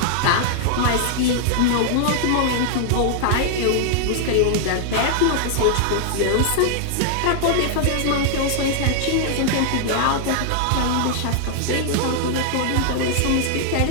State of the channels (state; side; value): different; both; correlation 0.00